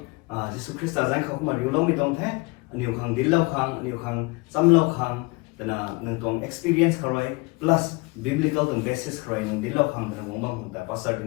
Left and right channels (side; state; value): right; quieter; 26.6 dB